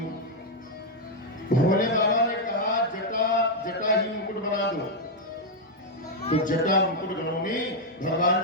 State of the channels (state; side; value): normal; both; correlation 0.00